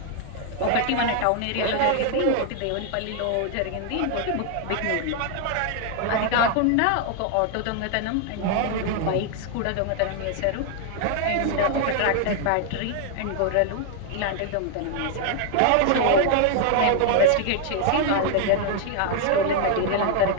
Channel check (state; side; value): different; both; correlation 0.00